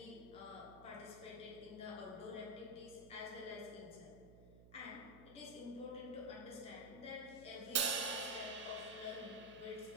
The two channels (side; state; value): right; noise; hum, 17 dB below the sound